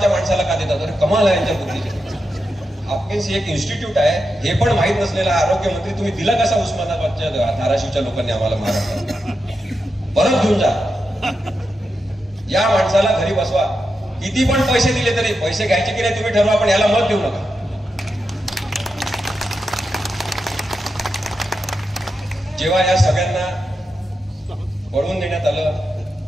माणसाला का देतात. अरे कमाल आहे यांच्या बुद्धीचे. हापकिन्स ही एक इन्स्टिट्यूट आहे हे पण माहित नसलेला आरोग्यमंत्री तुम्ही दिला कसा उस्मानाबादच्या धाराशिवच्या लोकांनी आम्हाला महाराष्ट्रात. परत घेऊन जा या माणसाला, घरी बसवा. किती पण पैसे दिले तरी, पैसे घ्यायचे की नाही तुम्ही ठरवा, पण याला मत देऊ नका. जेव्हा या सगळ्यांना पळवून देण्यात आलं,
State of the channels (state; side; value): normal; both; correlation 0.88